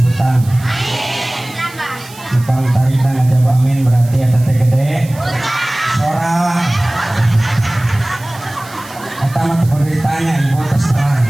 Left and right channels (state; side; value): noise; right; hiss, 20 dB below the sound